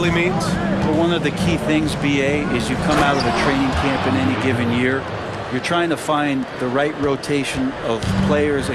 means? Well, one of the key things, BA, is you come out of a training camp in any given year. You're trying to find the right rotation of players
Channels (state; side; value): identical; both; correlation 1.00